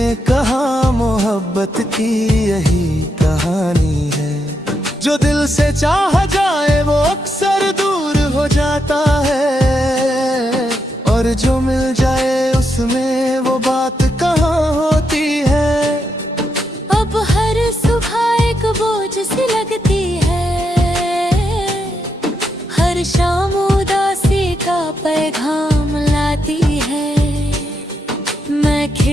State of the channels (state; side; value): normal; both; correlation 0.82